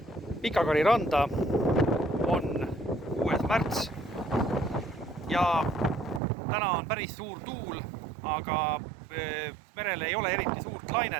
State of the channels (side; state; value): left; drops out; at 6.2 s